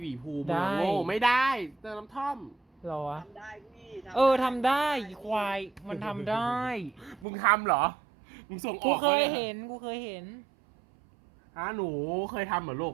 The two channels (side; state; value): left; drops out; at 7.2 s